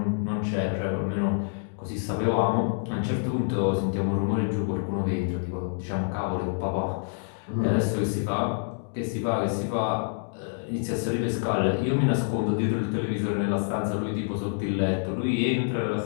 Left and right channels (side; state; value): right; silent; digital silence